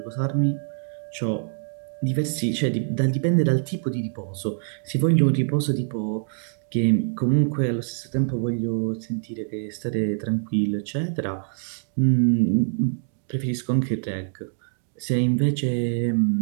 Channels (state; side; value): silent; left; digital silence